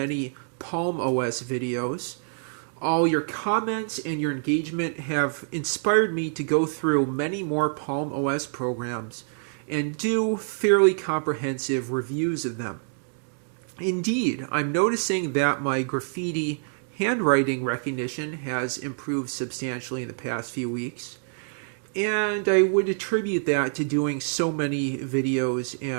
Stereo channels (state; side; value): silent; left; digital silence